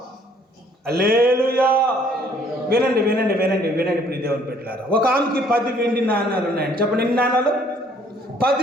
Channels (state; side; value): normal; both; correlation 0.61